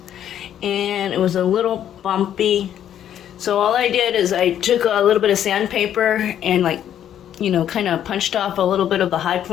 and it was a little bumpy. So all I did is I took a little bit of sandpaper and kind of punched off a little bit of the high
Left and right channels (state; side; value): quieter; right; 10.3 dB